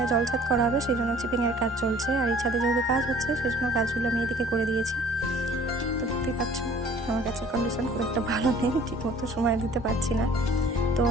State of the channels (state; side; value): normal; both; correlation 0.52